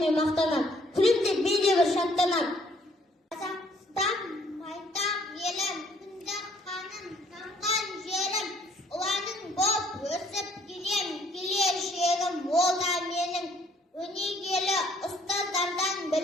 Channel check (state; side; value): normal; both; correlation 0.63